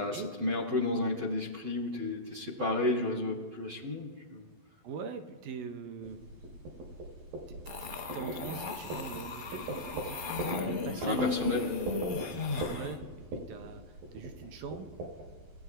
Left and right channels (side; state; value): left; late; 12 ms